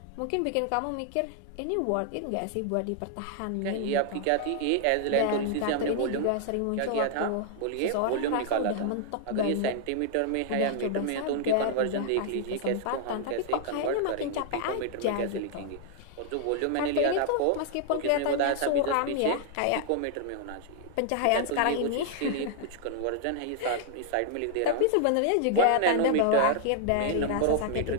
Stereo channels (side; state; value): both; different; correlation -0.01